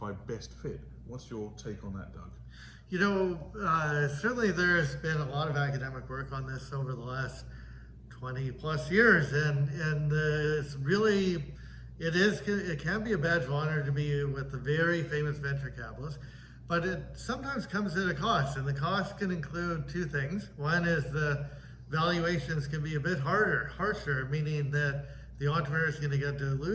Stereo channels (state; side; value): identical; both; correlation 1.00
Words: best fit. What's your take on that, Doug? You know, certainly there's been a lot of academic work on this over the last 20 plus years, and it's really, it can be a badge of honor to be with the very famous venture capitalists, but it sometimes comes at a cost, and the cost can include two things. One is the valuations can be a bit harsher, meaning that the entrepreneur is going to get